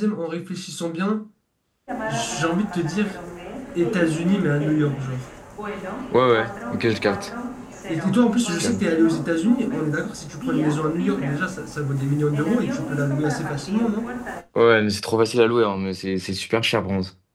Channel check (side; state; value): both; identical; correlation 1.00